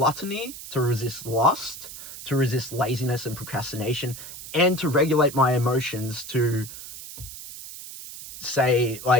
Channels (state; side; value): noise; right; hiss, 12 dB below the sound